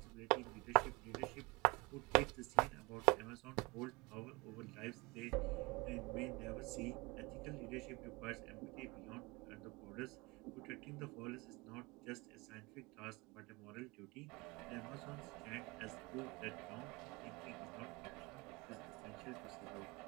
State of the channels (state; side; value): quieter; left; 25.3 dB